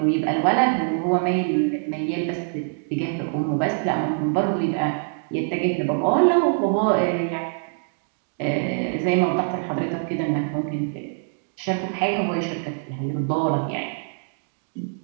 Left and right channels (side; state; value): left; silent; digital silence